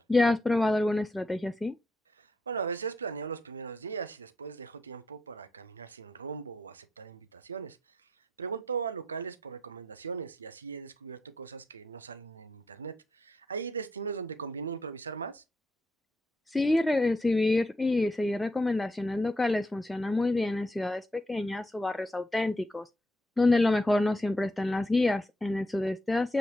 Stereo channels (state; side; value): normal; both; correlation 0.82